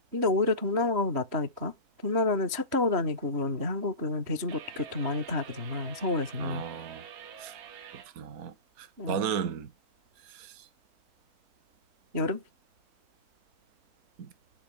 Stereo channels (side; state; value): left; late; 3.1 ms